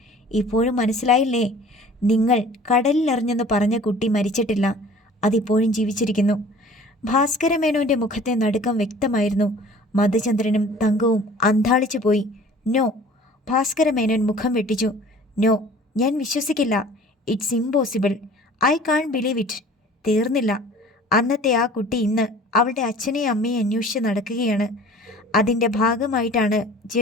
ഇപ്പോഴും മനസ്സിലായില്ലേ? നിങ്ങൾ കടലിലെറിഞ്ഞെന്ന് പറഞ്ഞ കുട്ടി മരിച്ചിട്ടില്ല. അതിപ്പോഴും ജീവിച്ചിരിക്കുന്നു. ഭാസ്കര മേനോൻ്റെ മുഖത്തെ നടുക്കം വ്യക്തമായിരുന്നു. മധുചന്ദ്രനും തങ്കവും അന്ധാളിച്ചു പോയി. നോ, ഭാസ്കര മേനോൻ മുഖം വെട്ടിച്ചു. നോ, ഞാൻ വിശ്വസിക്കില്ല. It's impossible. I can't believe it. തീർന്നില്ല. അന്നത്തെ ആ കുട്ടി ഇന്ന് അവളുടെ അച്ഛനെയും അമ്മയെ അന്വേഷിച്ച് നടക്കുകയാണ്. അതിൻ്റെ ഭാഗമായിട്ടാണ്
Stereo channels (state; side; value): normal; both; correlation 0.47